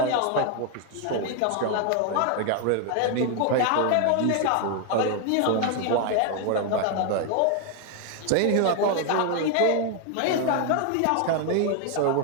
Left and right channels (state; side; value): different; both; correlation 0.01